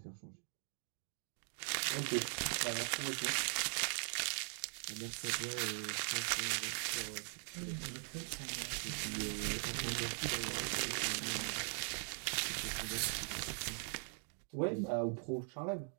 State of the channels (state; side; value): silent; left; 50 dB below the other